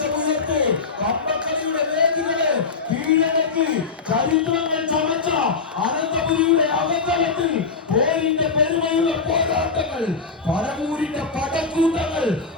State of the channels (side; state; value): right; quieter; 4.7 dB